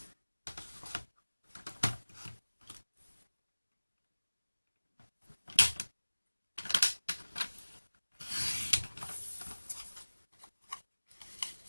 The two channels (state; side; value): inverted; both; correlation -1.00